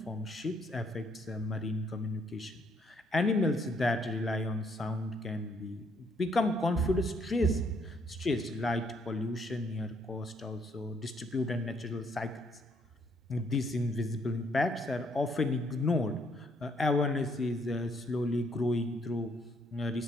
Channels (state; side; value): normal; both; correlation 0.70